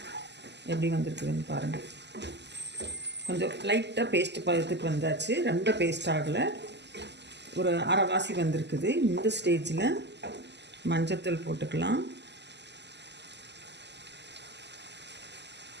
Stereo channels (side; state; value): left; late; 0.50 ms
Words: எப்படி வந்திருக்குதுன்னு பாருங்கள். கொஞ்சம் லைட்டாக பேஸ்ட் பதத்துக்கு வந்தாச்சு. ரொம்ப பேஸ்ட் ஆகலை, ஒரு அரைவாசி வந்திருக்குது. இந்த ஸ்டேஜில் மஞ்சத்தூள் போட்டுக்கலாம்.